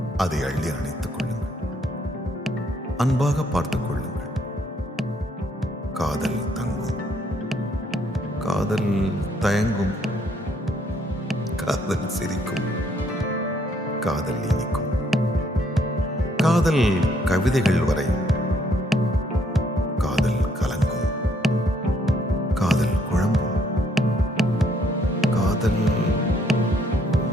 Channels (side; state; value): both; normal; correlation 0.68